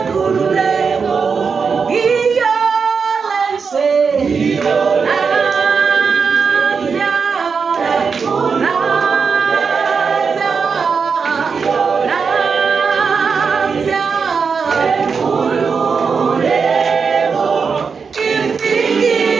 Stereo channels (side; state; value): left; quieter; 5.5 dB